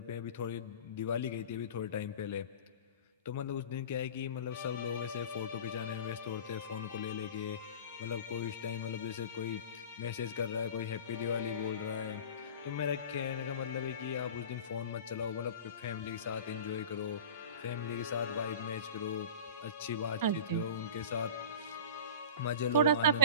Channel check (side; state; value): both; inverted; correlation -0.36